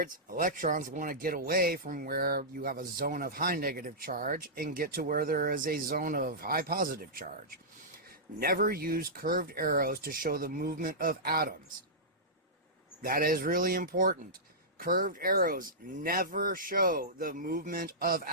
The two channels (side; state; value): both; normal; correlation -0.14